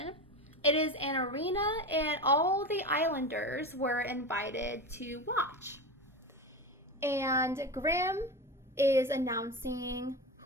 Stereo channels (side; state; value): both; normal; correlation 0.24